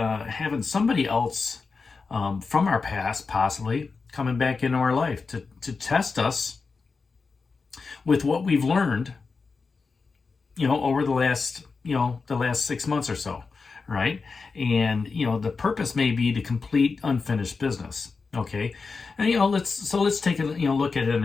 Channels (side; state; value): right; quieter; 4.6 dB